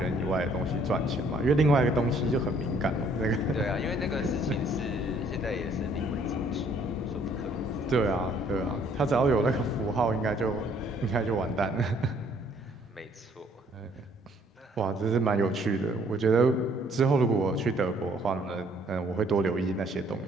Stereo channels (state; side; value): normal; both; correlation 0.63